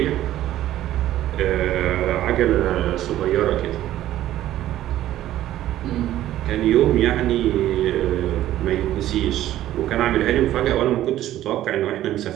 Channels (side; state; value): left; quieter; 13.4 dB